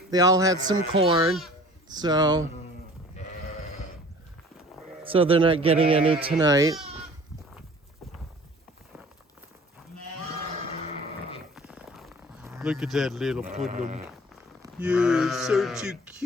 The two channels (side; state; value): both; normal; correlation 0.47